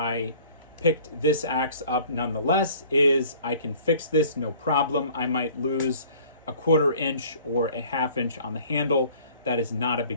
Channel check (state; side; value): inverted; both; correlation -0.51